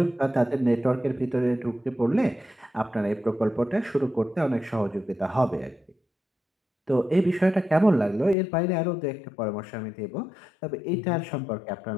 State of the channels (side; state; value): right; drops out; at 8.3 s